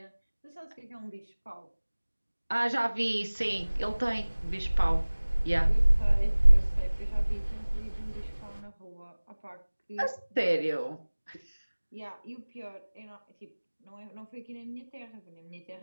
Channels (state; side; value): inverted; both; correlation -1.00